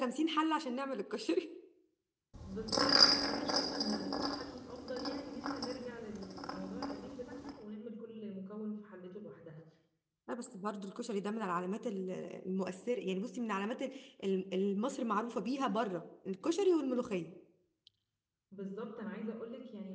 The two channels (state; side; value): identical; both; correlation 1.00